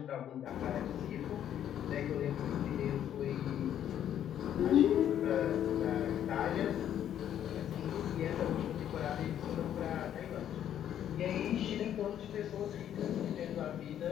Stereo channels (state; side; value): quieter; right; 10.4 dB